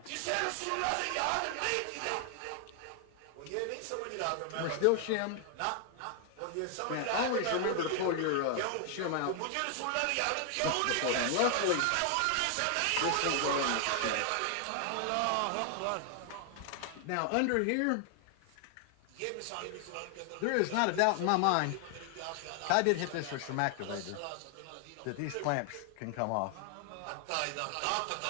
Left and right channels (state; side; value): different; both; correlation 0.00